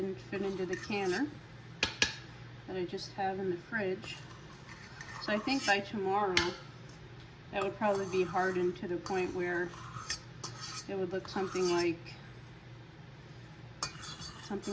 fit into the canner that I just have in the fridge. So I think by tomorrow that would probably be hardened to the point where it would look something like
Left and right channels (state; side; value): identical; both; correlation 1.00